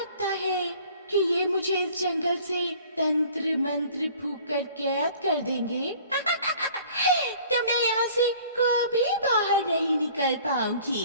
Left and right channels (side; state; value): both; inverted; correlation -0.50